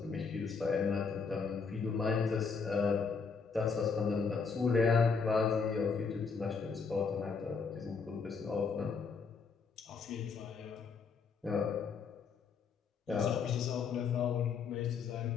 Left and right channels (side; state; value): right; quieter; 5.3 dB